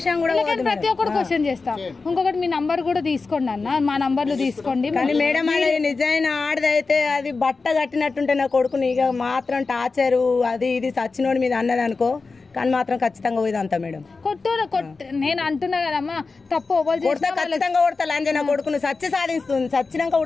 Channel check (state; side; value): quieter; right; 4.1 dB